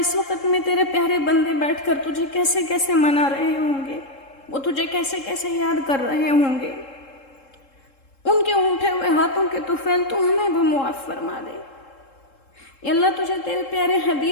وقت میں تیرے پیارے بندے بیٹھ کر تجھے کیسے کیسے منا رہے ہوں گے، وہ تجھے کیسے کیسے یاد کر رہے ہوں گے، ان کے اٹھے ہوئے ہاتھوں کے طفیل تو ہمیں بھی معاف فرما دے۔ یا اللہ تجھے تیرے پیارے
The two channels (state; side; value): late; right; 3.7 ms